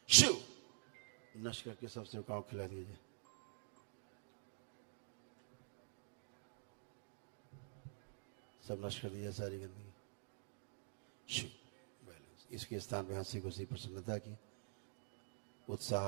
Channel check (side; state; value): left; silent; digital silence